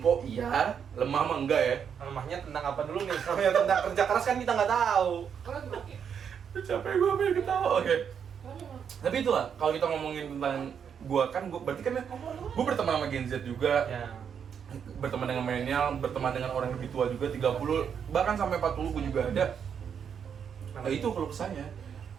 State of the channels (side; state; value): left; quieter; 7.5 dB